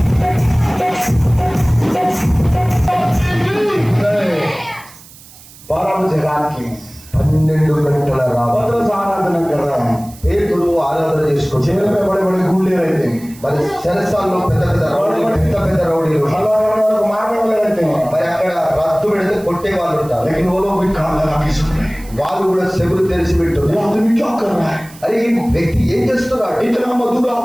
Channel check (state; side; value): noise; right; hiss, 21 dB below the sound